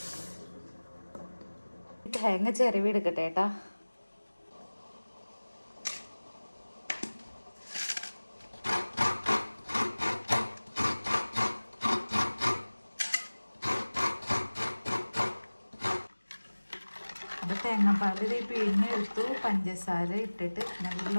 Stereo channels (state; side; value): inverted; both; correlation -1.00